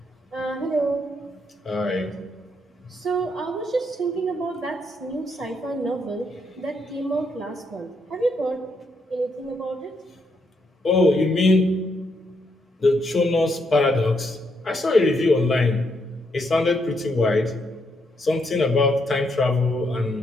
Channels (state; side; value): normal; both; correlation 0.77